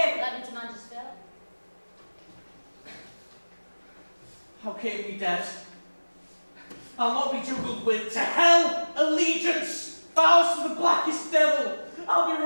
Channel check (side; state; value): both; inverted; correlation -1.00